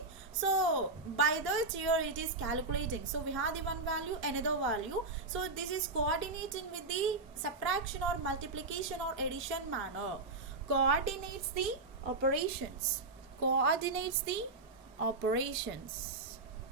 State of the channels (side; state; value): left; quieter; 3.5 dB